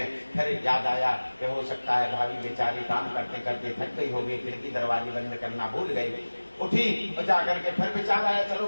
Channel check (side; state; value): both; inverted; correlation -1.00